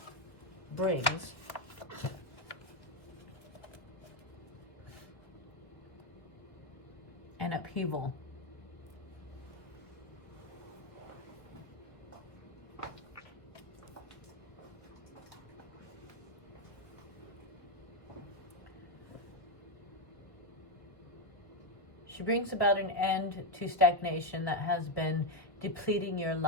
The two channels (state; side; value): late; right; 1.4 ms